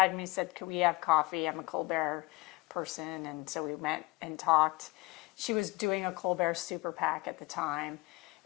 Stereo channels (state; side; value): quieter; right; 23.6 dB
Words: me and said, could we have coffee? I'm a Colbert person. And so we went and talked. She was doing a Colbert super PAC at the time.